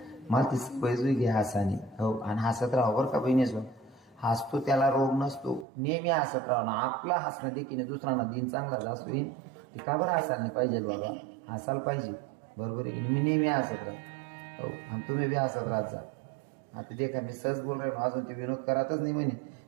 मला ती सवय जुई घे हसानी हो आणि हसत राहा बरं का बहिणीच हसतो त्याला रोग नसतो नेहमी हसत राहा ना आपला हसणं देखील दुसऱ्यांना दिन चांगला जास्त येईल ते का बरं हसायला नाही पाहिजे बाबा हसायला पाहिजे बरोबर आहे की मी नेहमी हसत राहा हो आणि तुम्ही बी हसत राहत जा. आता देखा मी सहज बोल राहिलो अजून ते विनोद करतच नाही म्हणे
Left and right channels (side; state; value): left; drops out; at 5.7 s